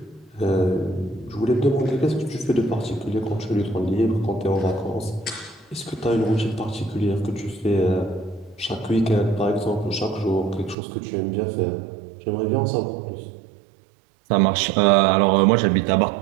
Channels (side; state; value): left; drops out; at 10.8 s